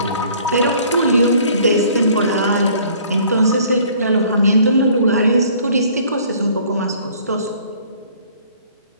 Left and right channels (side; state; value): both; inverted; correlation -0.55